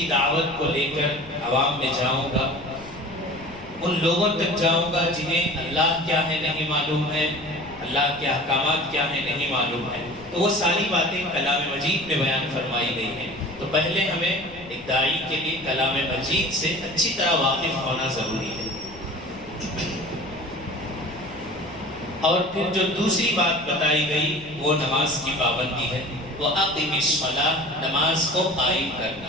دعوت کو لے کر عوام میں جاؤں گا، ان لوگوں تک جاؤں گا جنہیں اللہ کیا ہے نہیں معلوم ہے، اللہ کے احکامات کیا ہے نہیں معلوم ہے، تو وہ ساری باتیں کلام مجید میں بیان فرمائی گئی ہیں۔ تو پہلے ہمیں ایک داعی کے لیے کلام مجید سے اچھی طرح واقف ہونا ضروری ہے۔ اور پھر جو دوسری بات بتائی گئی وہ نماز کی پابندی ہے، وہ اقیم الصلاۃ، نماز کو قائم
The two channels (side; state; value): left; noise; rumble, 20 dB below the sound